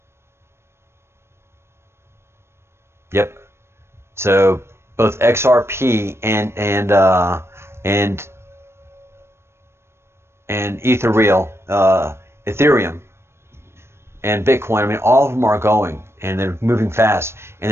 Yep. So both XRP and Ethereum and Bitcoin, I mean, all of them are going, and they're moving fast. And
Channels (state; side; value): late; left; 0.12 ms